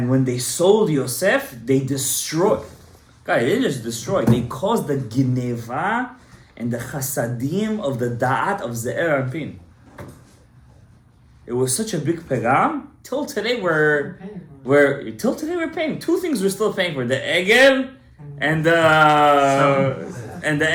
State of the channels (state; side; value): identical; both; correlation 1.00